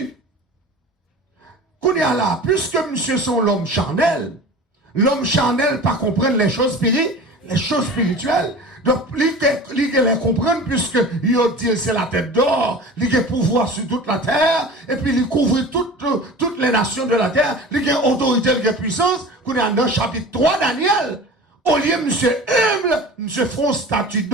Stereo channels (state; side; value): normal; both; correlation 0.37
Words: Qu'on est là, puisque monsieur sont l'homme charnel pas comprendre les choses spirituelles. Donc, il les comprendre puisque il dit c'est la tête d'or, il a pouvoir sur toute la terre, et puis il couvre toutes les nations de la terre, il a autorité, il a puissance. Qu'on est dans le chapitre 3 Daniel, au lieu monsieur humble, monsieur font statue